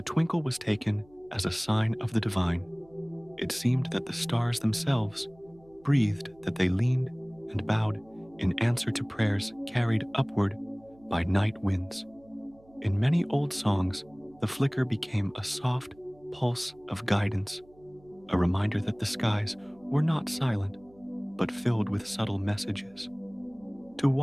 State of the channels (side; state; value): right; noise; hum, 28 dB below the sound